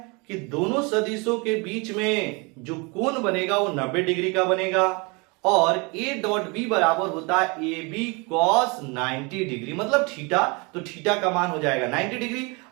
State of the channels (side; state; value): left; quieter; 29.1 dB